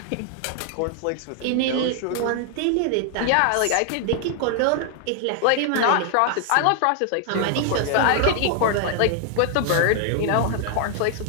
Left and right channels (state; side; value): different; both; correlation 0.00